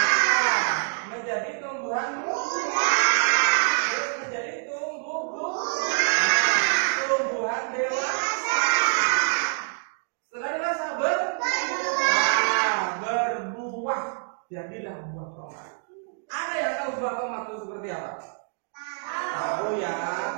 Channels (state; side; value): silent; left; 61 dB below the other